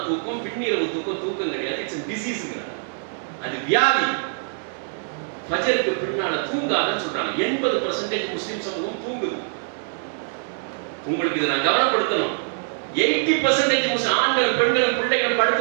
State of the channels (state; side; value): silent; left; 63 dB below the other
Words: தூக்கம், பின்னிரவு தூக்கம் கிடையாது. It's a disease. அது வியாதி. ஃபஜருக்கு பின்னால தூங்காதன்னு சொல்றாங்க. 80% முஸ்லிம் சமூகம் தூங்குது. உங்களுக்கு இதை நான் கவனப்படுத்தணும். 80% முஸ்லிம் ஆண்கள், பெண்கள், பிள்ளைகள்